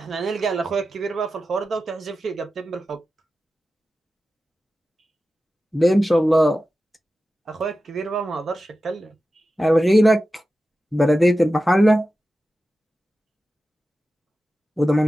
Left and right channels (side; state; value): both; normal; correlation 0.93